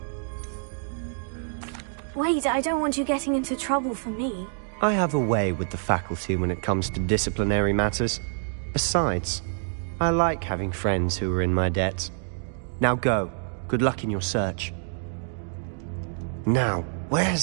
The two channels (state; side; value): silent; left; 60 dB below the other